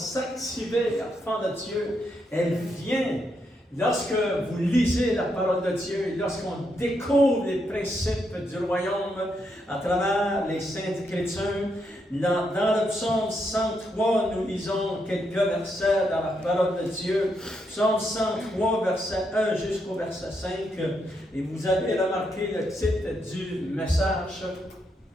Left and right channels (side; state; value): both; normal; correlation 0.79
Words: enfants de Dieu. Elle vient lorsque vous lisez la parole de Dieu, lorsqu'on découvre les principes du royaume à travers les Saintes Écritures. Dans le psaume 103, nous lisons quelques versets dans la parole de Dieu. Psaume 103, verset 1 jusqu'au verset 5. Et vous avez remarqué le titre du message